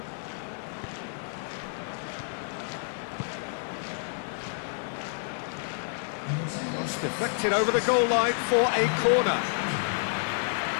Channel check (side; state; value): right; silent; 58 dB below the other